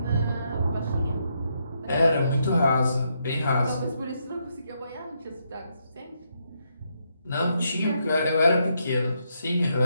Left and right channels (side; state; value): both; inverted; correlation -0.78